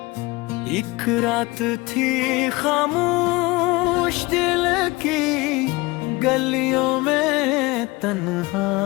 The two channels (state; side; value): quieter; right; 22.8 dB